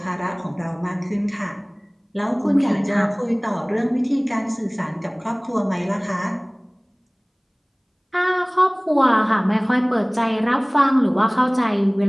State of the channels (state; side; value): identical; both; correlation 1.00